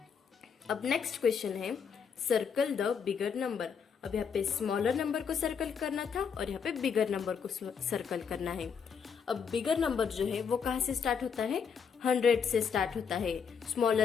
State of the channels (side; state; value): right; quieter; 6.6 dB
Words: अब नेक्स्ट क्वेश्चन है, सर्कल द बिगर नंबर। अब यहाँ पे स्मॉलर नंबर को सर्कल करना था और यहाँ पे बिगर नंबर को सर्कल करना है। अब बिगर नंबर जो है वो कहाँ से स्टार्ट होता है? 100 से स्टार्ट होता है।